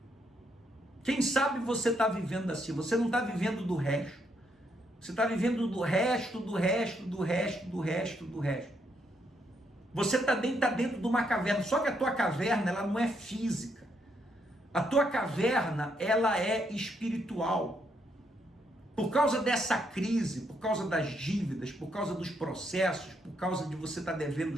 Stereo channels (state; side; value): normal; both; correlation 0.76